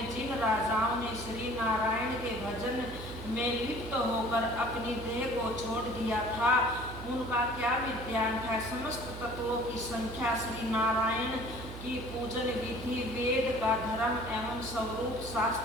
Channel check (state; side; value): noise; right; hum, 11 dB below the sound